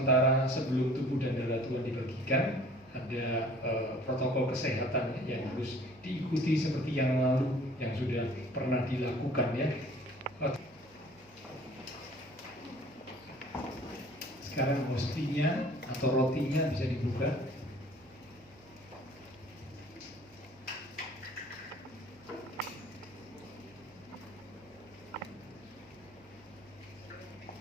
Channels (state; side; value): noise; right; hum, 27 dB below the sound